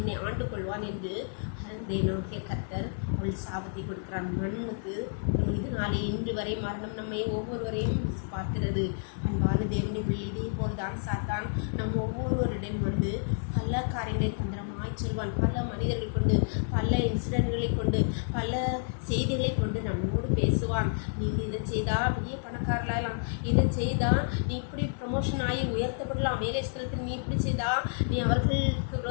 ஆண்டு கொள்வான் என்று தேவனாகிய கர்த்தர் அவள் சாபத்தை கொடுக்கிறான். மண்ணுக்கு இதனாலே இன்று வரை மரணம் நம்மை ஒவ்வொருவரையும் பார்க்கிறது. அன்பான தேவனுடைய பிள்ளை, இதே போல்தான் சாத்தான் நம் ஒவ்வொருவரிடம் வந்து பல காரியங்களை தந்திரமாய் சொல்வான். பல மனிதர்கள் கொண்டு, பல இன்சிடென்ட்களை கொண்டு, பல செய்திகளை கொண்டு நம்மோடு பேசுவான். நீங்கள் இதை செய்தா பெரிய பணக்காரலாம், இதை செய்தா நீ இப்படி ப்ரமோஷன் ஆகி உயர்த்தப்படலாம், வேலை ஸ்தலத்தில் நீ இப்படி செய்தா, நீ அவர்களுக்கு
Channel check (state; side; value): silent; right; digital silence